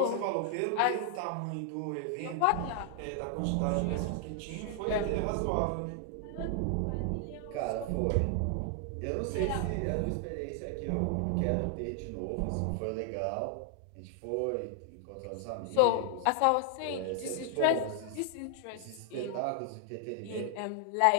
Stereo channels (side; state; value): both; different; correlation 0.00